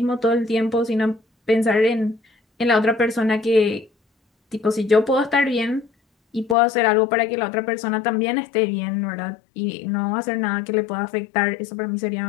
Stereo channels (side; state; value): right; drops out; at 6.6 s